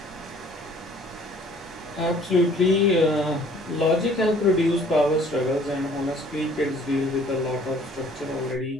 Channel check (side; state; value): both; normal; correlation 0.55